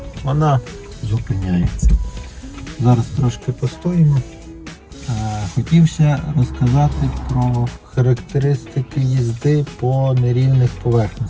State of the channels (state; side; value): identical; both; correlation 1.00